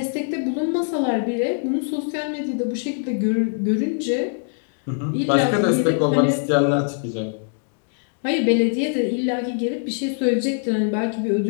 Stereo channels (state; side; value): silent; right; digital silence